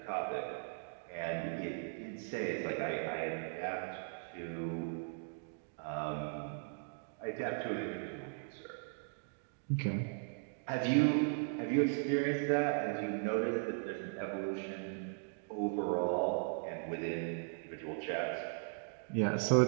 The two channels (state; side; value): silent; left; digital silence